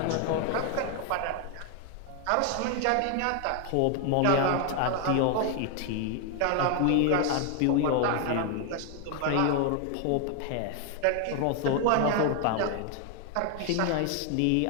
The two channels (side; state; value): both; different; correlation 0.00